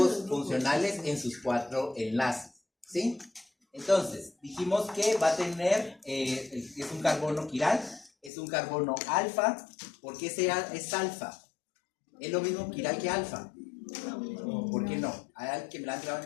funcionales en sus 4 enlaces, ¿sí? Entonces, dijimos que va a tener, es un carbono quiral, es un carbono alfa. ¿Por qué es alfa? ¿Es lo mismo quiral que alfa? ¿Por qué no? Hay alguien que me la han trabado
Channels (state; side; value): drops out; right; at 8.3 s